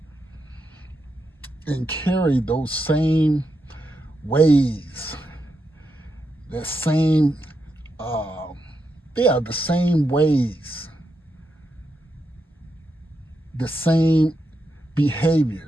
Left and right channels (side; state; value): both; normal; correlation 0.84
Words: and carry those same ways, the same ways, the same